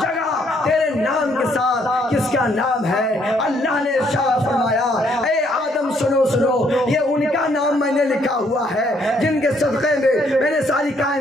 تیرے نام کے ساتھ کس کا نام ہے؟ اللہ نے ارشاد فرمایا اے آدم سنو یہ ان کا نام میں نے لکھا ہوا ہے جن کے صدقے میں نے ساری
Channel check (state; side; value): normal; both; correlation 0.69